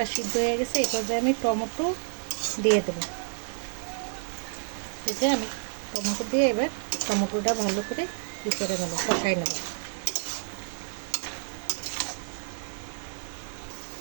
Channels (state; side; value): silent; left; digital silence